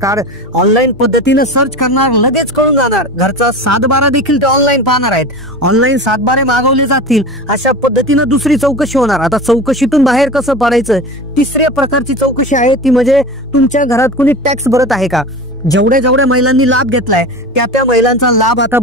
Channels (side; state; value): both; normal; correlation 0.32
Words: ऑनलाईन पद्धतीनं सर्च करणार, लगेच कळून जाणार. घरचा 7/12 देखील ते ऑनलाईन पाहणार आहेत. ऑनलाईन 7/12 मागवले जातील. अशा पद्धतीनं दुसरी चौकशी होणार. आता चौकशीतून बाहेर कसं पडायचं, तिसऱ्या प्रकारची चौकशी आहे ती म्हणजे तुमच्या घरात कोणी टॅक्स भरत आहे का. जेवढ्या महिलांनी लाभ घेतलाय त्या महिलांचा लाभ आता